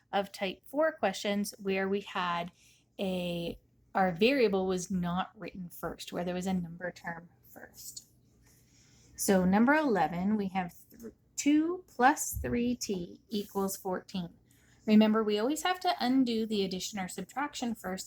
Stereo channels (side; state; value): both; identical; correlation 1.00